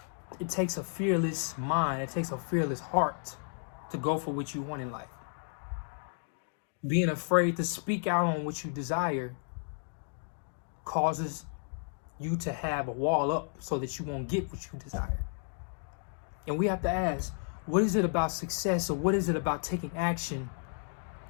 it takes a fearless mind, it takes a fearless heart to go for what you want in life. Being afraid to speak out on what you desire causes you to have a wall up so that you won't get what you desire. And we have to ask, what is it about success or what is it about taking action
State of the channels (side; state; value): right; silent; 56 dB below the other